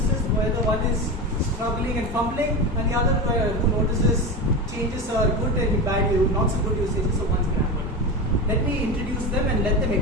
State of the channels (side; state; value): both; normal; correlation 0.22